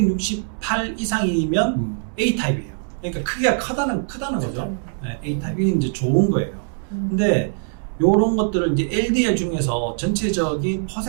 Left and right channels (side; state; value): left; silent; 62 dB below the other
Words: 이상이면 A타입이에요. 그러니까 크기가 크다는 거죠. 네, A타입이 이제 좋은 거예요. 근데 요런 것들을 이제 LDL 중에서 전체적인